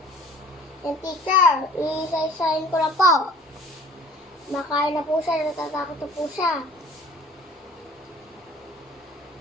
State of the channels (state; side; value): normal; both; correlation 0.49